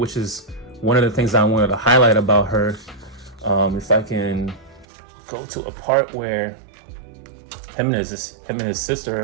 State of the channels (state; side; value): drops out; left; at 4.9 s